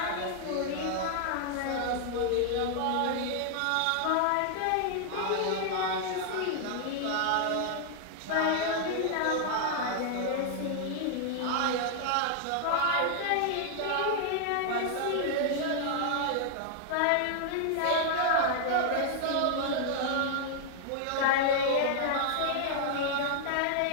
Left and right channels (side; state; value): both; different; correlation 0.00